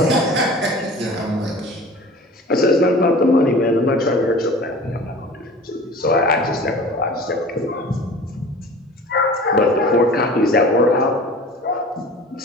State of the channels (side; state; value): both; normal; correlation 0.41